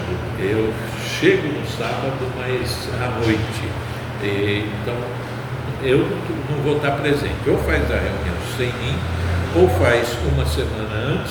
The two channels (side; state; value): both; identical; correlation 1.00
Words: Eu chego no sábado, mas à noite. Então, eu não vou estar presente. Ou faz a reunião sem mim, ou faz uma semana